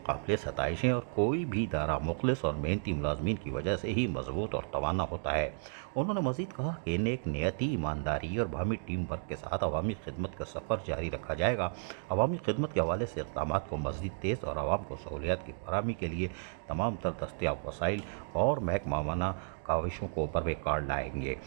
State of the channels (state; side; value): silent; left; digital silence